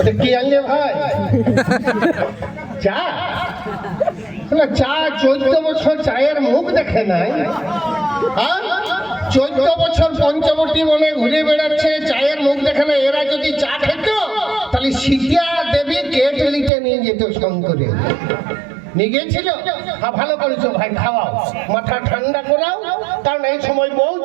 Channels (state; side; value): drops out; left; at 16.7 s